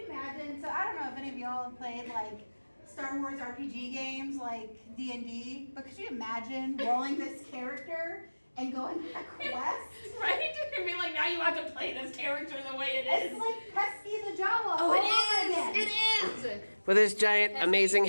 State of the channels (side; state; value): both; inverted; correlation -1.00